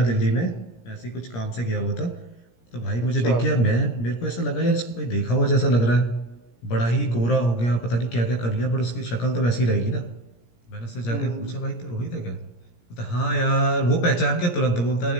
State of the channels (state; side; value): late; right; 17 ms